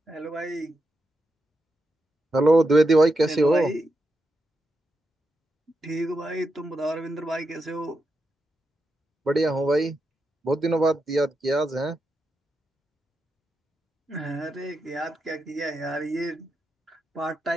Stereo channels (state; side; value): normal; both; correlation 0.86